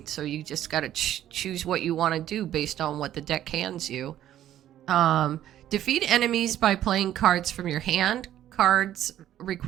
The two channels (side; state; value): left; quieter; 12.1 dB